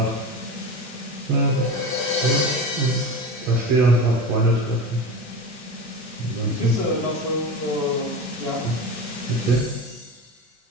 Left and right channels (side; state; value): both; normal; correlation 0.27